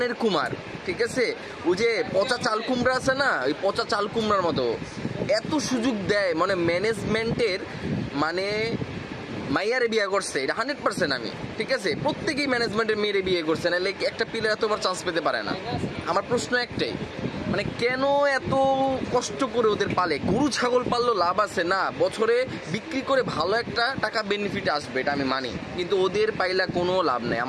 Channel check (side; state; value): both; identical; correlation 1.00